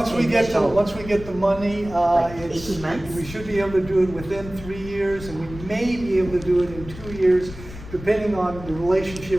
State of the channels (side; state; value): left; noise; rumble, 14 dB below the sound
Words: we get initial- the money, Like it's, 18 months? we should be able to do it within 3 years, and we may be able to do it in 2 years, depending on the